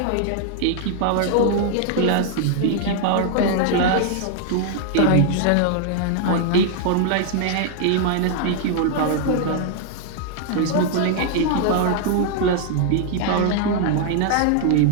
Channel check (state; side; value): different; both; correlation -0.01